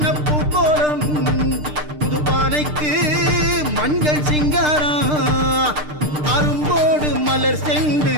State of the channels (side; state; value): left; late; 6.6 ms